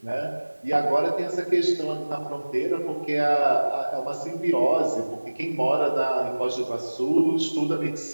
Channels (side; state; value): both; inverted; correlation -1.00